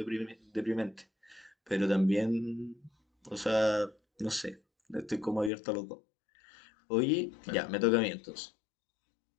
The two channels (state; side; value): drops out; right; at 5.5 s